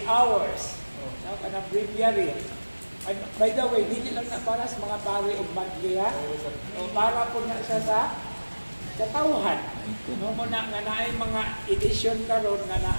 Hours. Kanang breviary. And by the way, hindi lang na para sa mga pari o madliya. O para po na siya sa katawhan. No, muna nga naay mga edition karon nga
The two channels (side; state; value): both; inverted; correlation -1.00